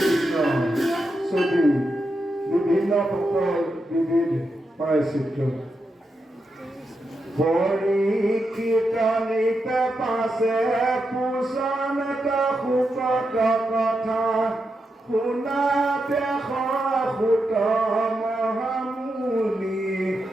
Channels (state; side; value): normal; both; correlation 0.86